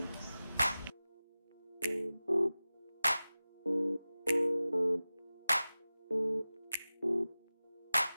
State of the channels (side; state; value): both; inverted; correlation -0.96